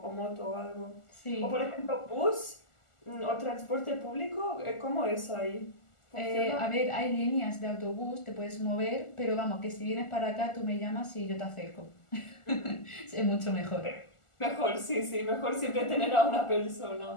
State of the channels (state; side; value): late; right; 1.4 ms